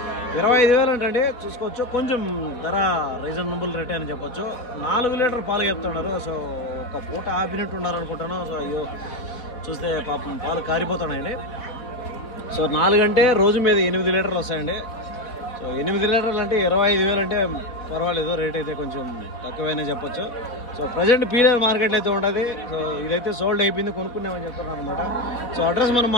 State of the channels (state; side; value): late; right; 4.2 ms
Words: 25,000 అంటండి, చూసుకోవచ్చు. కొంచెం ధర రీజనబుల్ రేట్ అని చెప్పొచ్చు. 4 లీటర్ పాలు చెప్తున్నారు. సో ఒక పూట ఆపినట్టు ఉన్నారు అనుకుంటాను. సో అయ్యో చూస్తే పాపం పాలు కారిపోతున్నాయండి. సో 4 అంటే రోజు మీద 8 లీటర్లు వస్తాయండి. సో 8 లీటర్లు అంటే 25,000 అంటే పర్వాలేదు, రేట్ అయితే కొంచెం తక్కువైనా చెప్పొచ్చు. సో ప్రజెంట్ పీలేరు మార్కెట్లో అయితే ఉండదు. సో ఇదైతే సోల్డ్ అయిపోయింది, కొనుక్కున్నామని చెప్తున్నారు అనమాట. సో అడ్రస్ మనం